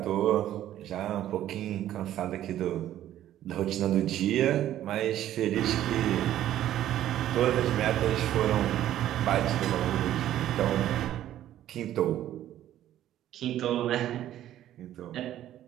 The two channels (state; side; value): quieter; left; 12.4 dB